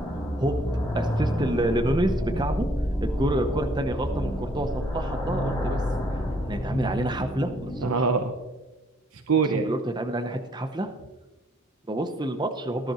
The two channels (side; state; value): both; normal; correlation 0.65